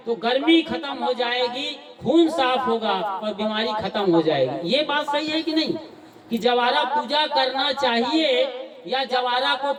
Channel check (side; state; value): both; identical; correlation 1.00